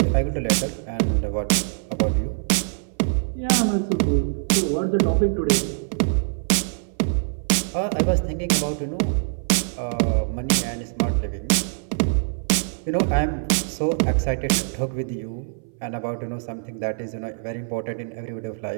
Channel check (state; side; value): silent; left; 60 dB below the other